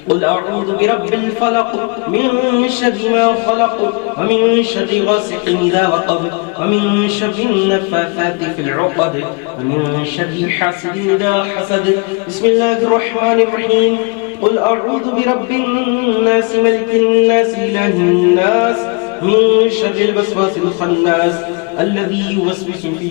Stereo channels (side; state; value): right; quieter; 32.6 dB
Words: قل أعوذ برب الفلق من شر ما خلق ومن شر غاسق إذا وقب ومن شر النفاثات في العقد ومن شر حاسد إذا حسد. بسم الله الرحمن الرحيم. قل أعوذ برب الناس ملك الناس إله الناس من شر الوسواس الخناس الذي يوسوس في